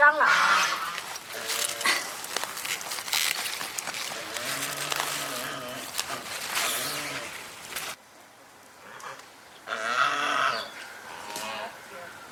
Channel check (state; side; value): identical; both; correlation 1.00